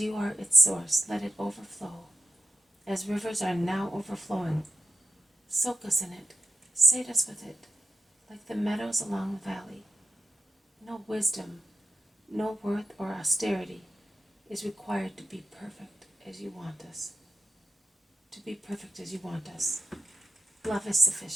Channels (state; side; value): normal; both; correlation 0.90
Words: you are its source, let it overflow, as rivers are now overflowing. Soak us in it, sate us with it, like the meadows along the valley. No wisdom, no worth or austerity is required to be perfect as you want us. To be perfect as you want us. Love is